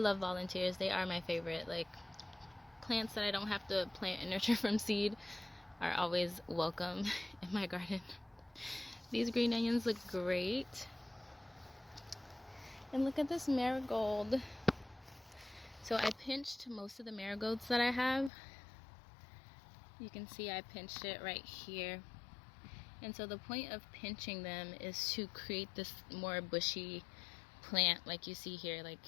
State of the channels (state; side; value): drops out; right; at 18.3 s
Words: volunteers. They are my favorite. Like, plants that I don't have to plant and nurture from seed are always welcome in my garden. These green onions look great. And look at this marigold. So I pinched most of the marigolds that I have. You can see I pinched it right here. And so the point of pinching them is to create this more bushy plant, like you see here, like